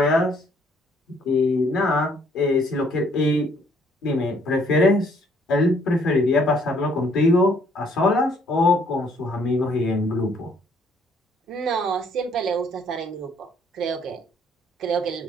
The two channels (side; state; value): both; normal; correlation 0.64